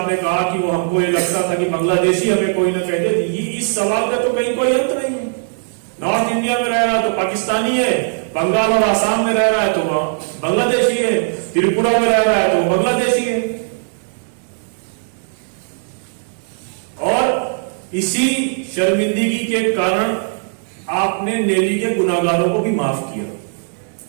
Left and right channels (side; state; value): left; silent; 67 dB below the other